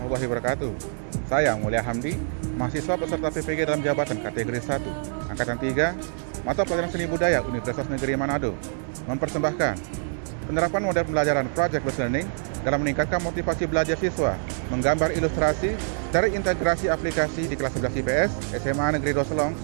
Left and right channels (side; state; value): left; silent; 61 dB below the other